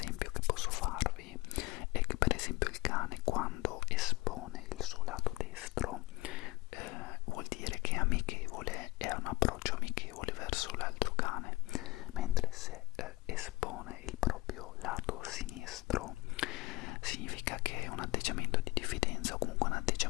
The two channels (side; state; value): right; quieter; 20.6 dB